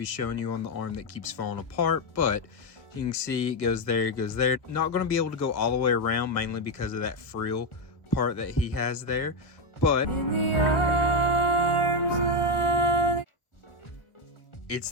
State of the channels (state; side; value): late; right; 1.4 ms